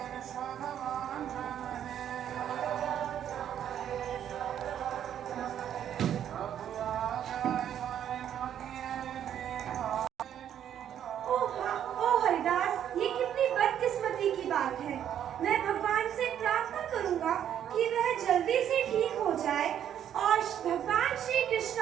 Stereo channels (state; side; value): quieter; left; 9.9 dB